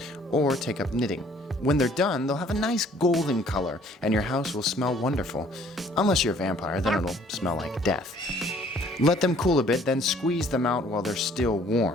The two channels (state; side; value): normal; both; correlation 0.58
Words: or take up knitting. When they're done, they'll have a nice golden color, and your house will smell wonderful. Unless you're a vampire, then it'll smell like death. Let them cool a bit, then squeeze them out while they're still